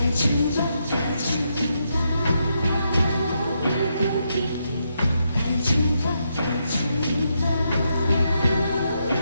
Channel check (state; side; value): inverted; both; correlation -0.81